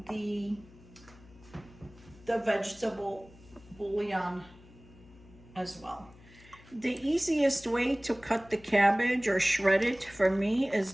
the vegetable bouillon as well. The easiest way to cut the cabbage or shred it for me is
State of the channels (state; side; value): noise; left; hum, 23 dB below the sound